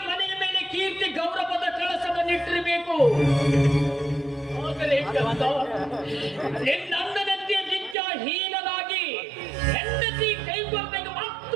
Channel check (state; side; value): drops out; left; at 8.0 s